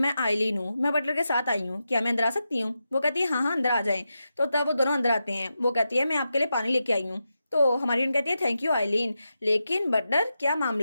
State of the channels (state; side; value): inverted; both; correlation -0.89